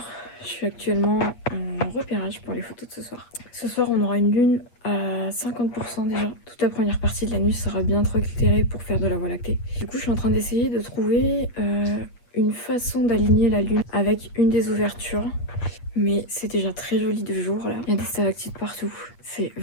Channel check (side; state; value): right; late; 8.5 ms